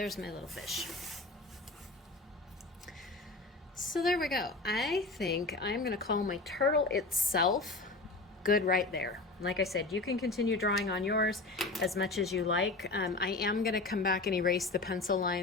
my little fish. So there we go. I think I'm going to call my turtle itself good right there. Like I said, you can continue drawing on yours as much as you like. I am going to come back and erase the pencil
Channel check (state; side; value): quieter; right; 3.2 dB